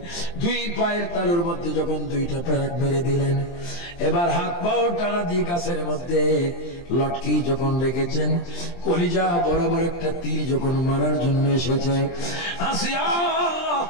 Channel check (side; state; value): right; late; 23 ms